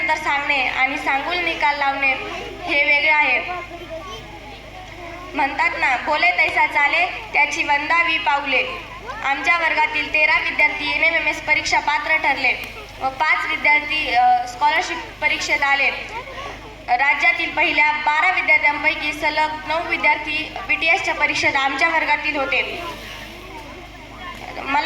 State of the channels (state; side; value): identical; both; correlation 1.00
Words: सांगणे आणि सांगून निकाल लावणे हे वेगळे आहे. म्हणतात ना, बोले तैसा चाले त्याची वंदावी पाऊले. आमच्या वर्गातील 13 विद्यार्थी NMMS परीक्षा पात्र ठरले व 5 विद्यार्थी स्कॉलरशिप परीक्षेत आले. राज्यातील पहिल्या 12 विद्यार्थ्यांपैकी सलग 9 विद्यार्थी BTSच्या परीक्षेत आमच्या वर्गातील होते.